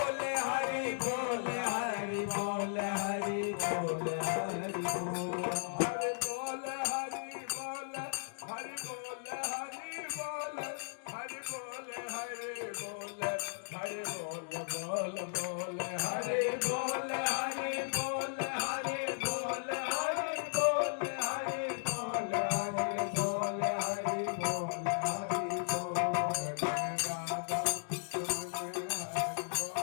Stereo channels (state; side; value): silent; right; digital silence